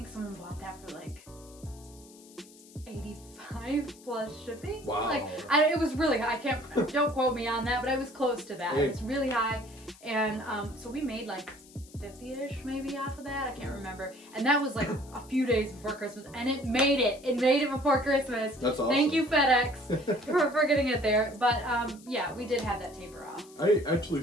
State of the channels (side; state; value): left; noise; hiss, 23 dB below the sound